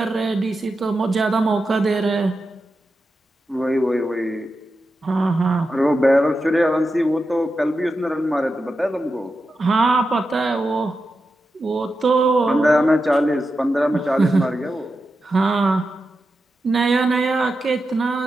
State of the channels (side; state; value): both; normal; correlation 0.90